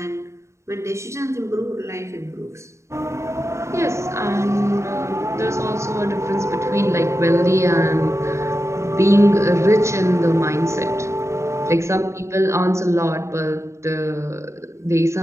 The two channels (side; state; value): left; late; 0.14 ms